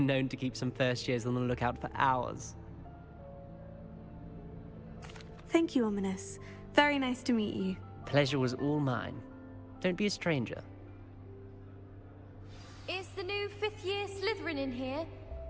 known to keep some first years on the lookout for hours. Thank you, Ominous. Very nice to meet you. Pleasure was all mine. Don't be a stranger. Is the new 5th year Slytherin in here?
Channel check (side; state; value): both; identical; correlation 1.00